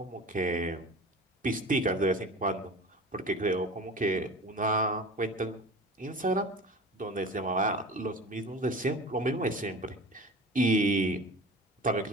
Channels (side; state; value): both; normal; correlation 0.36